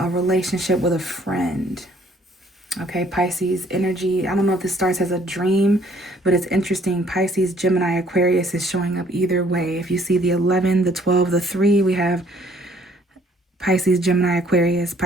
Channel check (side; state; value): both; normal; correlation 0.62